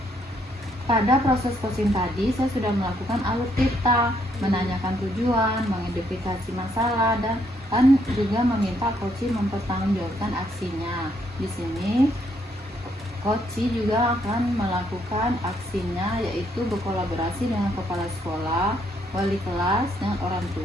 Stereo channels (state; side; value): normal; both; correlation 0.72